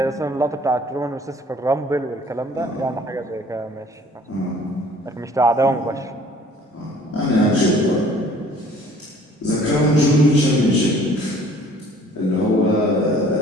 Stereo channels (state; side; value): normal; both; correlation 0.54